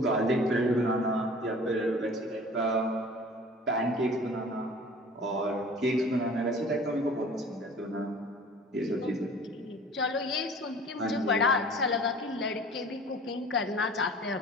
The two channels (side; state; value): both; normal; correlation 0.45